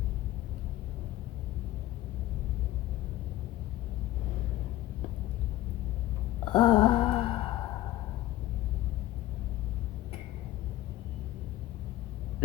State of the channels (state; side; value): quieter; right; 15.3 dB